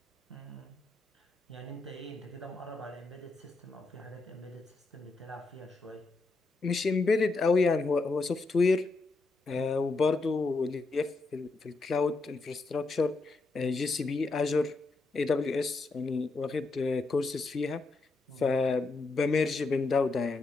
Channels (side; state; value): right; quieter; 3.6 dB